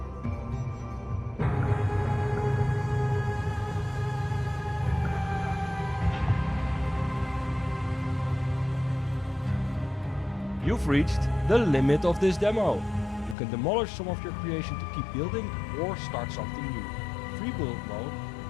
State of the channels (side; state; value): right; drops out; at 13.4 s